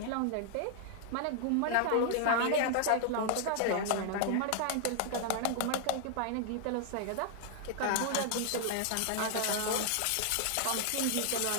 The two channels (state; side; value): different; both; correlation 0.00